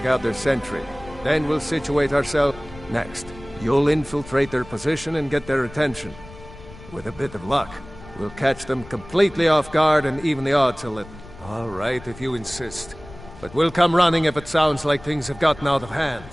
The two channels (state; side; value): noise; left; rumble, 18 dB below the sound